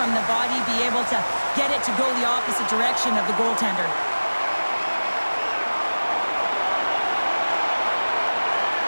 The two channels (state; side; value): inverted; both; correlation -1.00